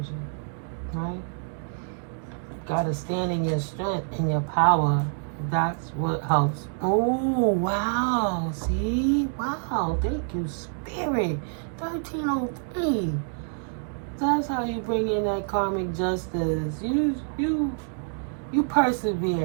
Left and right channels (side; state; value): left; silent; 60 dB below the other